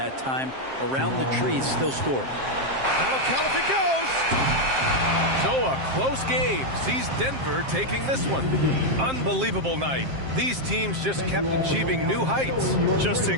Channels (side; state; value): left; late; 7.6 ms